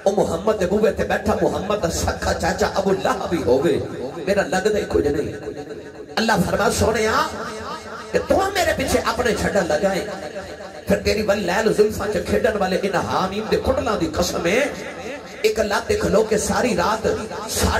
او محمد دے بوے تے بیٹھا محمد دا سکھا چاچا ابو لہب بھی ہوگے میرا لگ دے کچھ نہیں اللہ فرما سونے کہ تو میرے پیچھے اپنے چھڑا لگائیں پھر تیری بل لیل زلفاں چے کھیڈن والے ان حامیم دے کھڑلاں دی قسم ہے ایک اللہ تے کھلو کے ساری رات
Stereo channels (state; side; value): identical; both; correlation 1.00